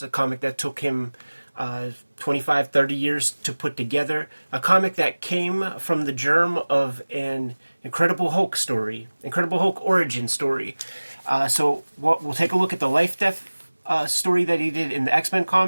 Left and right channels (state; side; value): inverted; both; correlation -1.00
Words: a comic that took him 25, 30 years to put together. A comic that came from the germ of an Incredible Hulk story, Incredible Hulk origin story. So we'll take a look at the Lifedeath story that he did in the X-Men